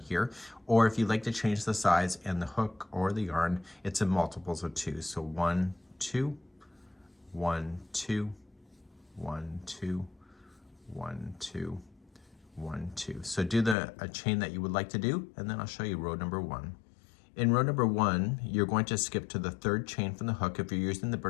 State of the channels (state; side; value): drops out; right; at 13.8 s